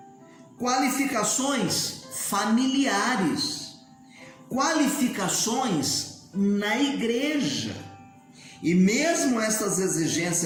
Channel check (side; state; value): both; identical; correlation 1.00